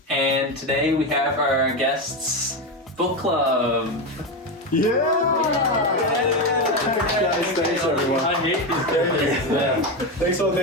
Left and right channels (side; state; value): both; normal; correlation 0.14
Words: and today we have our guests book club. Thanks everyone. I hate these characters. Thank